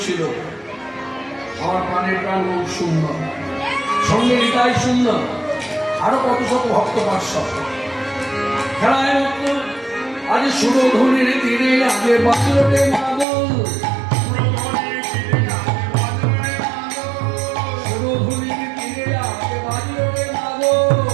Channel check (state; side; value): drops out; left; at 13.2 s